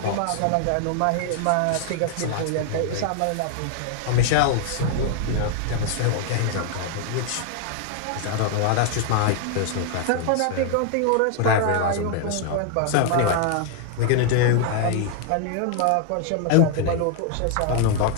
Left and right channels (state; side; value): different; both; correlation 0.00